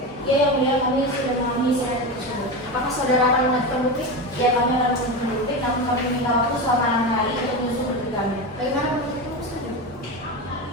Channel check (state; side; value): noise; left; rumble, 27 dB below the sound